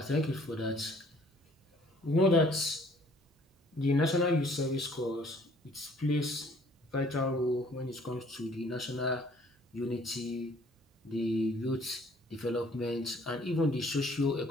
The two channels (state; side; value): normal; both; correlation 0.58